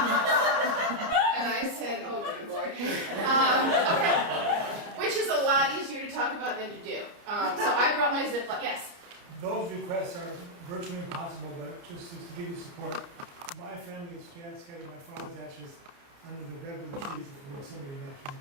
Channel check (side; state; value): left; late; 30 ms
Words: And I said, oh, good Lord. Okay. Which is a lot easier to talk about than to do. So I brought my Ziploc, yes. Those requests are virtually impossible, but just to give you support, my family's scattered my father's ashes under the redwood trees at the Yosemite National